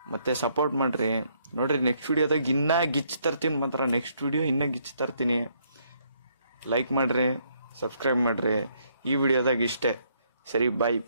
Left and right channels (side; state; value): both; inverted; correlation -0.70